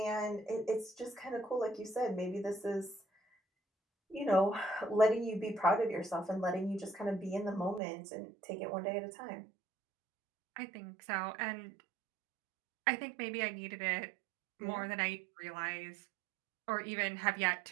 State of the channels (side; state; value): left; drops out; at 7.8 s